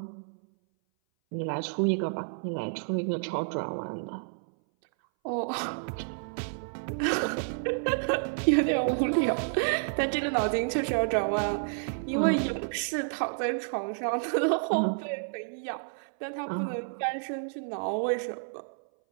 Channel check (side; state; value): left; silent; 58 dB below the other